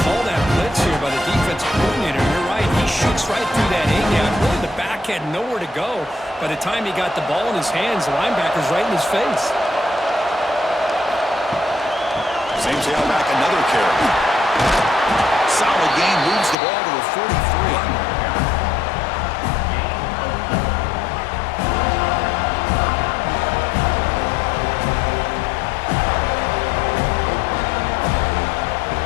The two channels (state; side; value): drops out; right; at 16.6 s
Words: call that blitz here by the defensive coordinator. You're right. He shoots right through that A-gap. Really, the back had nowhere to go. By the time he got the ball in his hands, the linebacker's right in his face. Same tailback, another carry. Solid gain, moves the ball to the 43.